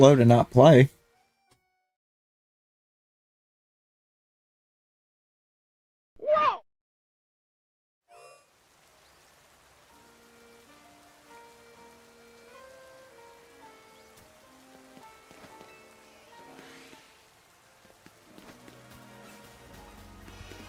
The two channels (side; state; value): both; identical; correlation 1.00